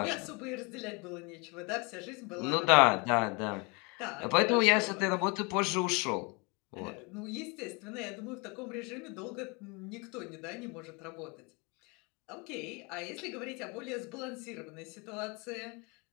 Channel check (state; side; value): quieter; right; 30.8 dB